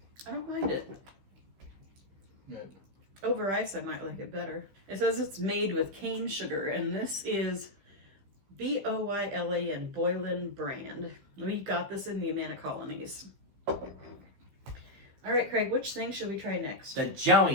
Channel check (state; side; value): late; left; 15 ms